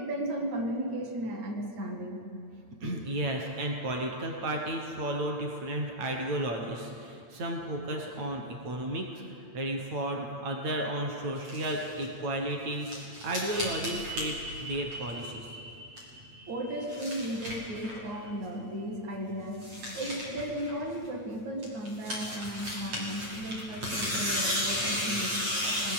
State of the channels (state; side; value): late; left; 8.8 ms